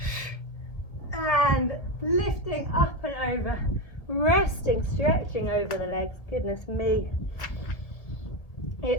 And lifting up and over. Resting, stretching over the legs. Goodness me.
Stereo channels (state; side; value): late; right; 1.8 ms